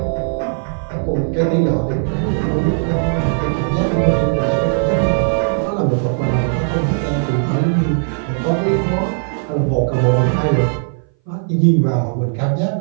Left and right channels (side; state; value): left; silent; 60 dB below the other